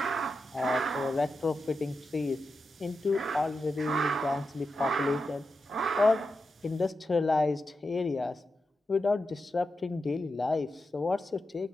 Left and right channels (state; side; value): normal; both; correlation 0.89